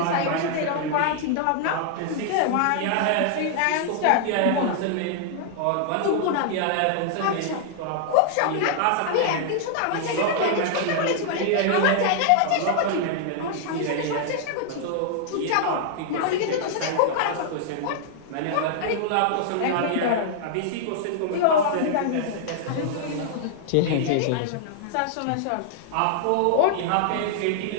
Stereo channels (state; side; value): different; both; correlation -0.01